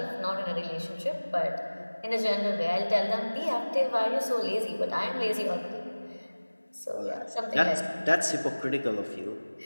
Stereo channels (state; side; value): inverted; both; correlation -1.00